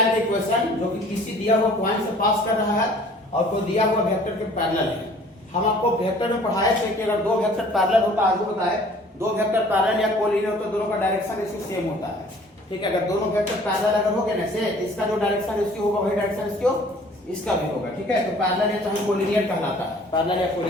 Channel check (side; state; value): both; normal; correlation 0.52